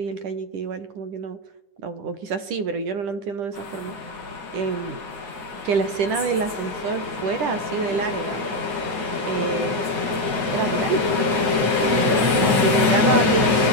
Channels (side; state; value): left; late; 9.4 ms